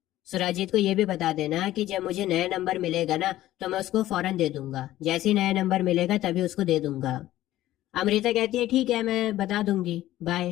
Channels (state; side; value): quieter; right; 14.6 dB